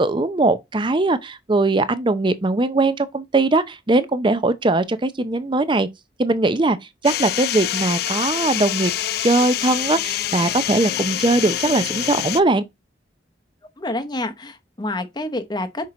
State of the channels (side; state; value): both; normal; correlation 0.49